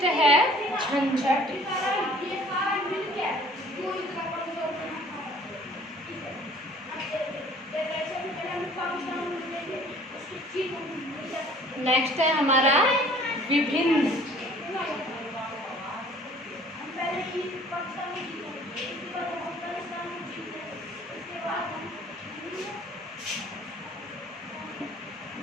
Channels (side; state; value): both; normal; correlation 0.52